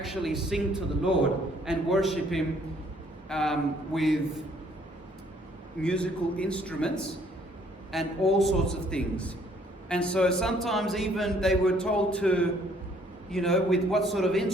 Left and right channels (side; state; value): both; normal; correlation 0.63